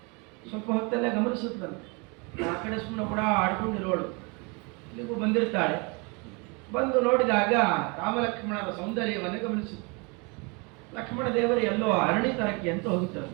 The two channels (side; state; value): left; quieter; 30.5 dB